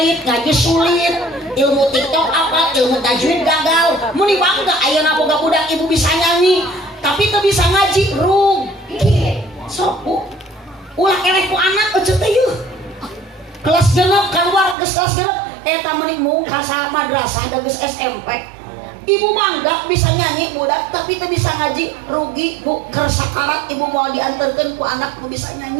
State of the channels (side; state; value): left; drops out; at 14.8 s